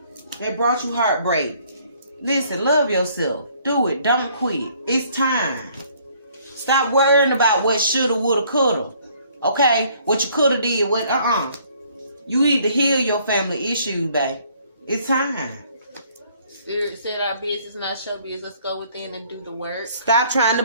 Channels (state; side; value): inverted; both; correlation -0.61